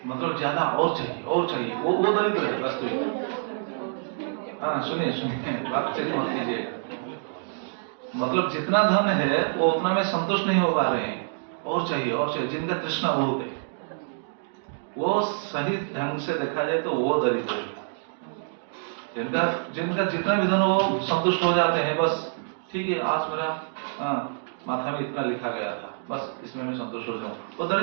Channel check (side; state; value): left; silent; digital silence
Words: मतलब ज्यादा और चाहिए, वो दरिद्र है वास्तविक। हाँ सुनिए, बात चेक मत कीजिएगा। मतलब जितना धन है वो उतना में संतुष्ट नहीं हो पा रहे हैं, और चाहिए, जिनका तृष्णा बहुत है, वो सही ढंग से देखा जाए तो वो दरिद्र है। जिनका जितना भी धन हो वो संतुष्ट हो जाते हैं, बस ठीक है, आज मेरा माथा में इतना लिखा गया था, बस इसमें मैं संतुष्ट हो जाऊं, वो